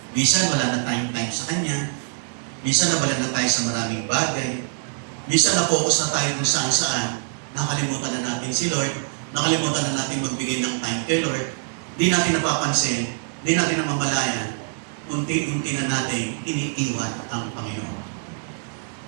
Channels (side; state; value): left; silent; digital silence